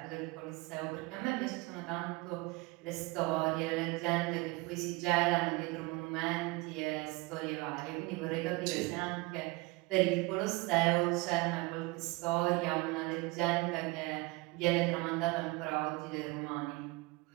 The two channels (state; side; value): quieter; left; 24.2 dB